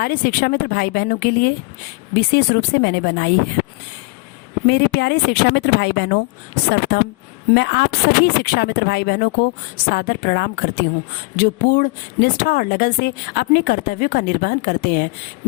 शिक्षा मित्र भाई बहनों के लिए विशेष रूप से मैंने बनाई है। मेरे प्यारे शिक्षा मित्र भाई बहनों, सर्वप्रथम मैं आप सभी शिक्षा मित्र भाई बहनों को सादर प्रणाम करती हूँ, जो पूर्ण निष्ठा और लगन से अपने कर्तव्यों का निर्वहन करते हैं।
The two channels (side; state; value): right; quieter; 27.9 dB